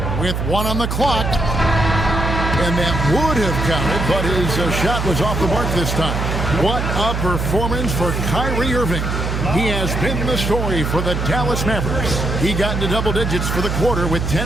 With 1 on the clock. And that would have counted, but his shot was off the mark this time. What a performance for Kyrie Irving. He has been the story for the Dallas Mavericks. He got into double digits for the quarter with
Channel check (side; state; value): right; noise; hum, 2 dB below the sound